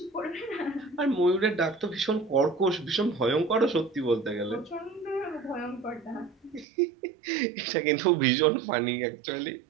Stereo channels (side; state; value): left; drops out; at 6.7 s